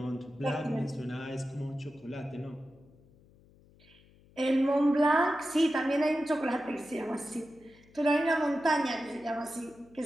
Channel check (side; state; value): left; noise; hum, 27 dB below the sound